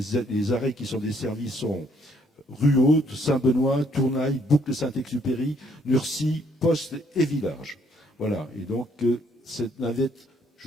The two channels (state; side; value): normal; both; correlation 0.67